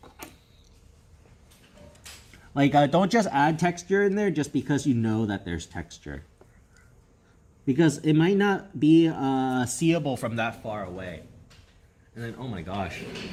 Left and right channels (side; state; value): both; identical; correlation 1.00